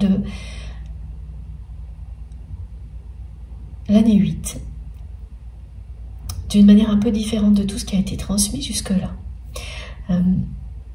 l'année 8, d'une manière un peu différente de tout ce qui a été transmis jusque-là.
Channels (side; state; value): both; identical; correlation 1.00